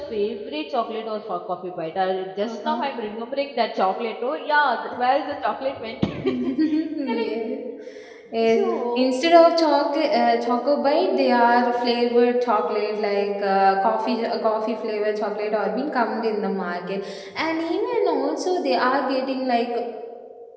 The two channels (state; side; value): identical; both; correlation 1.00